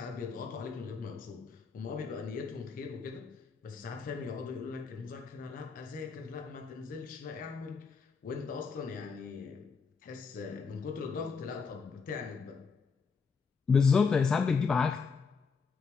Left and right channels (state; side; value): quieter; right; 5.3 dB